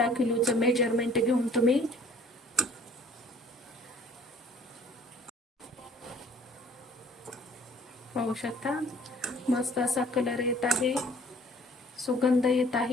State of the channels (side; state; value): both; normal; correlation 0.54